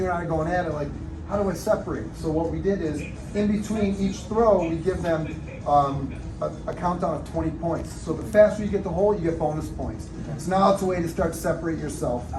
and I are going at it like, how do I separate? So what we did is, in between each throw, we give them a countdown of 20 points. So the faster you get the hole, you get bonus points. So now it's a way to start to separate yourself,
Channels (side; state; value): both; identical; correlation 1.00